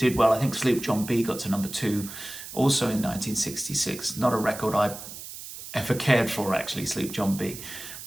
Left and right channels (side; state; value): right; noise; hiss, 12 dB below the sound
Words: well. I think Sleep John B got to number 2 also in 1966. Not a record I ever cared for, actually, Sleep John B,